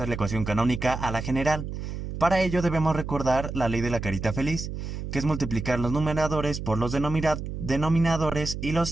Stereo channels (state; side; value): noise; right; hum, 6 dB below the sound